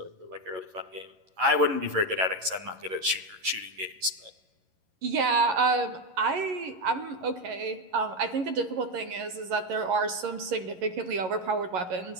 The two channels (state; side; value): late; left; 11 ms